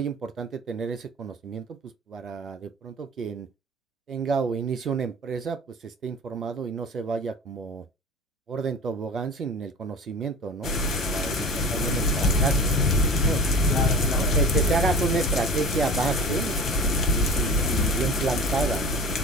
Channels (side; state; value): both; normal; correlation 0.37